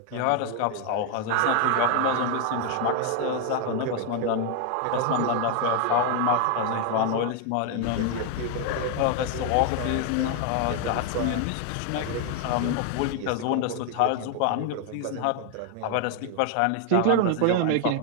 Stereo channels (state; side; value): different; both; correlation 0.01